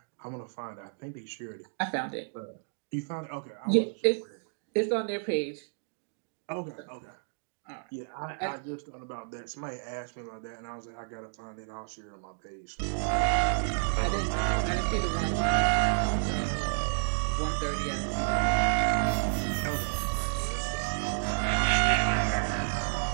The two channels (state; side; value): silent; left; digital silence